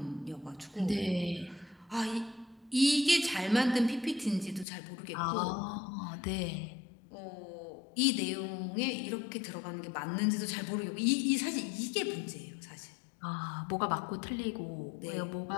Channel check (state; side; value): drops out; right; at 4.7 s